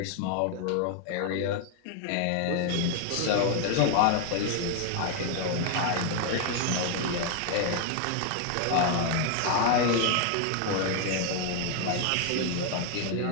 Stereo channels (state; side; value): different; both; correlation 0.01